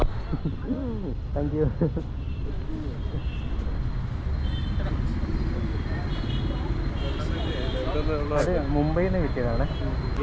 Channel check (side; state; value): both; identical; correlation 1.00